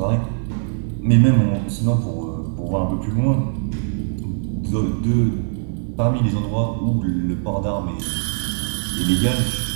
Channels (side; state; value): left; silent; 57 dB below the other